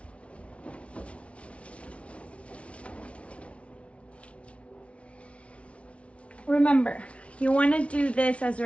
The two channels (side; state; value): right; late; 0.062 ms